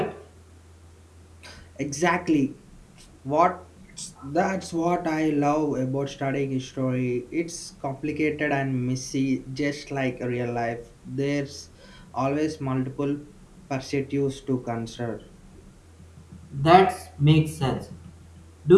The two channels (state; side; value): identical; both; correlation 1.00